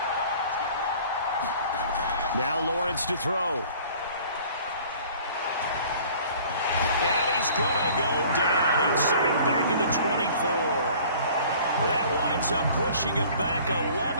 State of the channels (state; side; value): inverted; both; correlation -0.50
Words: Now Lawrence to throw. And he's going to go down. He's sacked back in the 24. That winds up pushing him back